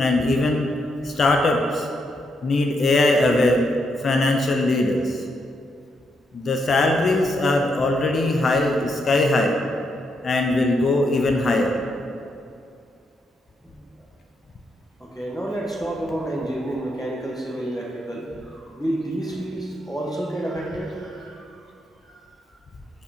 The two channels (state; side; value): normal; both; correlation 0.79